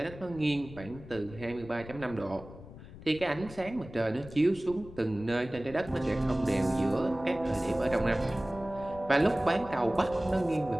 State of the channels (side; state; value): left; noise; rumble, 16 dB below the sound